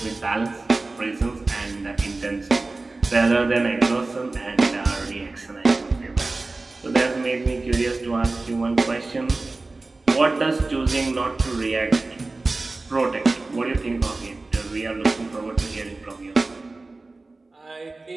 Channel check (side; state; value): left; quieter; 3.3 dB